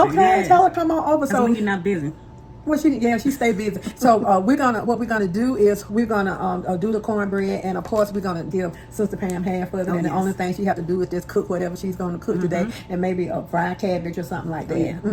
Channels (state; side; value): identical; both; correlation 1.00